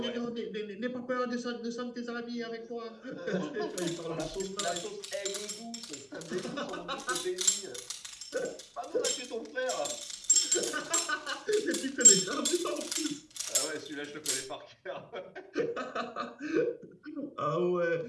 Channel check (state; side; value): identical; both; correlation 1.00